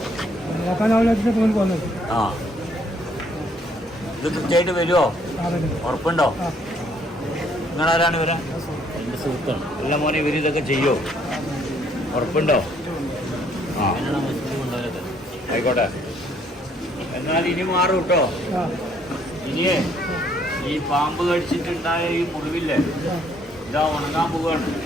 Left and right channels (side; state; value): both; normal; correlation 0.66